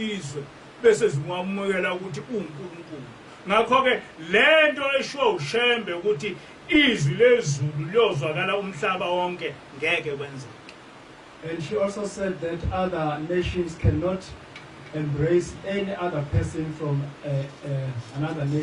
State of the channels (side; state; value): both; identical; correlation 1.00